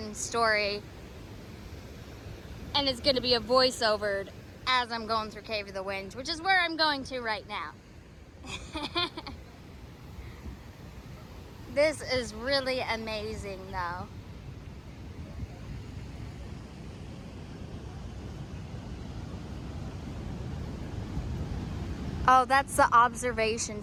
story. And it's gonna be a voiceover as I'm going through Cave of the Winds, which is where I'm going to right now. This is really amazing though. Oh, that's the observation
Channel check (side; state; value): both; identical; correlation 1.00